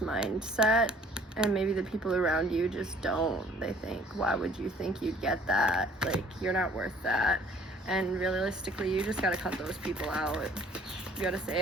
and maybe the people around you just don't. They think, why would you think you'd get that? Like, you're not worth that. And realistically, you just gotta cut those people out. You gotta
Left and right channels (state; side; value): normal; both; correlation 0.56